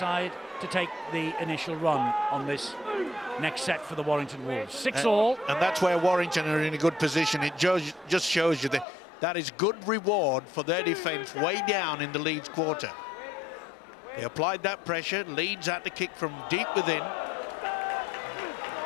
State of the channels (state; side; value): drops out; right; at 8.8 s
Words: to take the initial run on this next set for the Warrington Wolves. 6-all. And that's where Warrington are in a good position. It just shows you that is good reward for their defence way down in the Leeds quarter. They applied that pressure. Leeds had to kick from deep within.